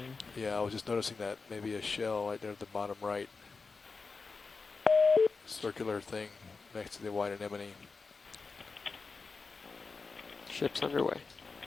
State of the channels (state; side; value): quieter; right; 4.4 dB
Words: yeah, I was just noticing that maybe a shell right there at the bottom right. Circular thing next to the white anemone. Ship's underway.